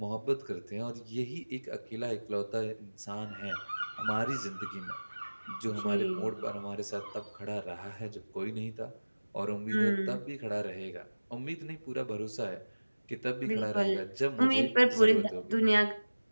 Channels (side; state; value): both; inverted; correlation -1.00